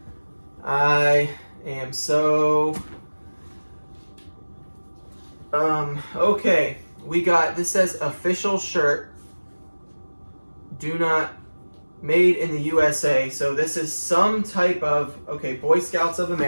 I am so... okay. We got, this says official shirt, do not, made in the USA. So this is some type of, okay, Boy Scouts of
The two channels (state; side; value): inverted; both; correlation -1.00